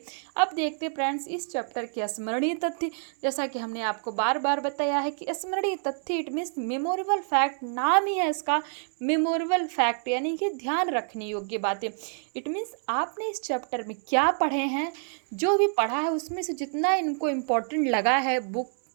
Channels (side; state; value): left; silent; 60 dB below the other